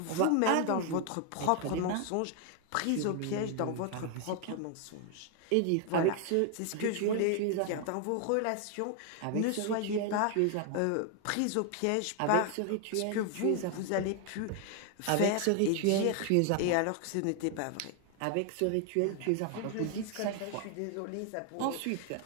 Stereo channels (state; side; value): different; both; correlation 0.00